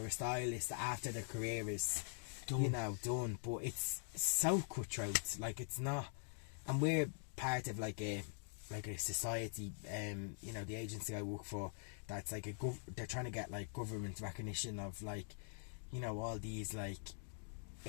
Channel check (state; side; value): silent; right; digital silence